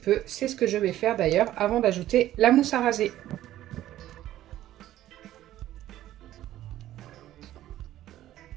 c'est ce que je vais faire d'ailleurs avant d'ajouter la mousse à raser.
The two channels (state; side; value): quieter; left; 13.5 dB